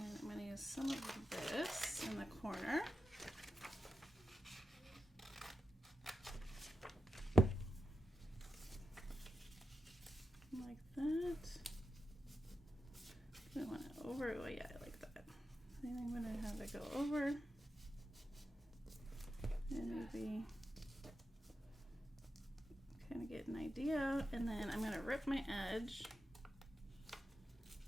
I'm gonna use some of this in the corner. Like that. I want it over. Oh yeah, I like that. I think I'm gonna have it go over, and maybe kind of get an idea. And then I'm gonna rip my edge.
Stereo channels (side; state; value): both; normal; correlation 0.89